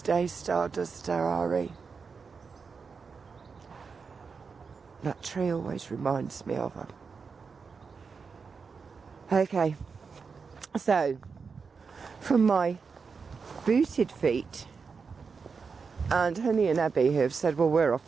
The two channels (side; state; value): left; quieter; 5.3 dB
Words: Day, Stardust Ari. That tree always reminds me of her. Okay, so from my booted feet And Honey and Abby have said, well, we're